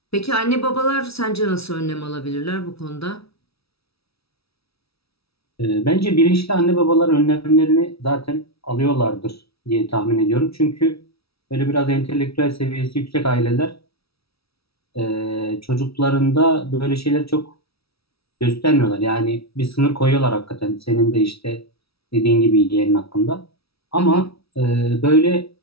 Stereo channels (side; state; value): right; late; 0.76 ms